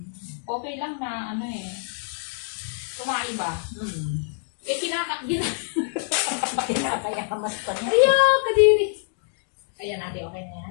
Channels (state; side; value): silent; right; digital silence